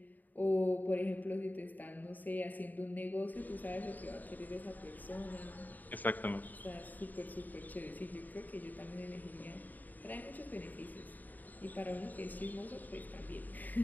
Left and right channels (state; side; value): late; right; 0.084 ms